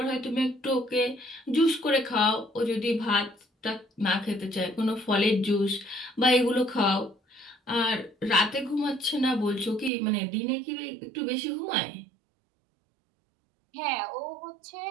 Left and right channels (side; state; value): left; drops out; at 9.9 s